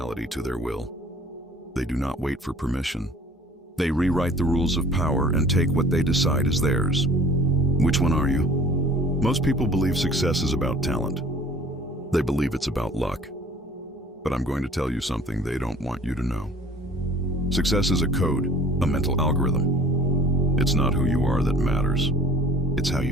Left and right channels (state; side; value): normal; both; correlation 0.50